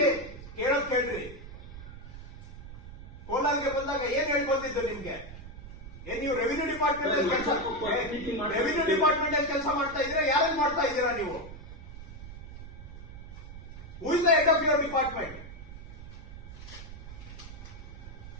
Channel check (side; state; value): right; noise; rumble, 13 dB below the sound